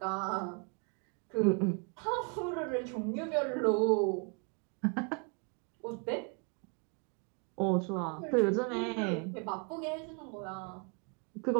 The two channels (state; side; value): quieter; left; 36.3 dB